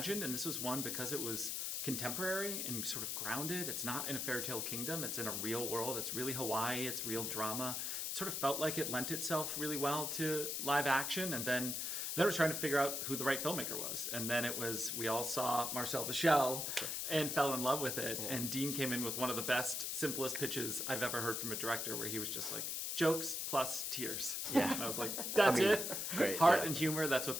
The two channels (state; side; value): noise; left; hiss, 2 dB below the sound